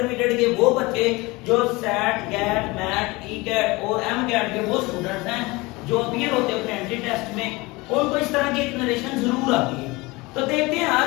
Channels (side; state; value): right; quieter; 23.3 dB